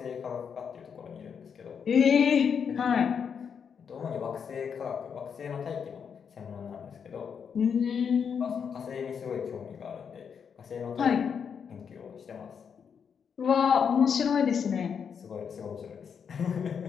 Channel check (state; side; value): quieter; right; 6.9 dB